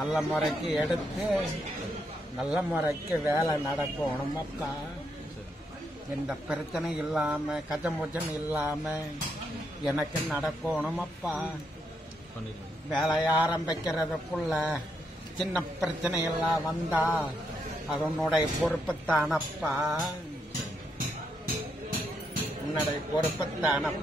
முறைக்கு எடுத்து நல்ல முறைக்கு வேலை நடக்கணும் அப்பா. எந்த பிரச்சனை இல்லாம கஜமுஜன் இல்லாம எனக்கு நடக்கணும் அப்பா. வேலையை ஆரம்பிக்கிறதுக்குள்ள சின்ன பிரச்சனை எல்லாம் வந்தா அது உன்னுடைய பொறுப்புத்தானப்பா. உன்னுடைய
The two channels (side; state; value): both; normal; correlation 0.79